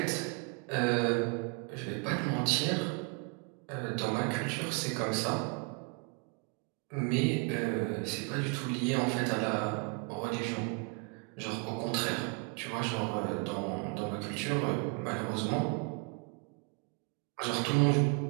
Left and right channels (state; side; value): quieter; left; 31.2 dB